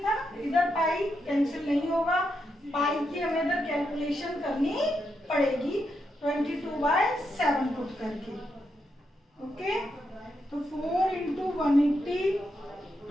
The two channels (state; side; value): normal; both; correlation 0.83